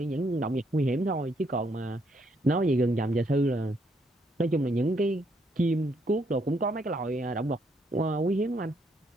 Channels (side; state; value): both; normal; correlation 0.73